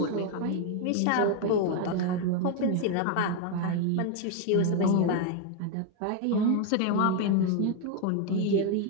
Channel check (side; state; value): both; different; correlation 0.01